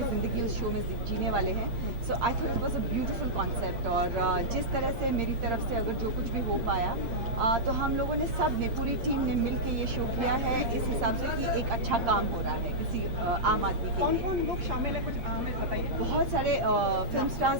ज़िंदगी उस शो में जीने वाले हैं। So I thought it was a beautiful concept, और जिस तरह से मेरी तरफ से अगर जो कुछ भी हो पाया, तो हम लोगों ने सब ने, पूरी टीम ने मिल के ये शो किया है इस हिसाब से कि एक अच्छा काम हो रहा है किसी आम आदमी के कौन लिए। कौन लोग शामिल हैं, कुछ हमें बताइए। बहुत सारे फिल्म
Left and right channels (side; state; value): left; late; 8.6 ms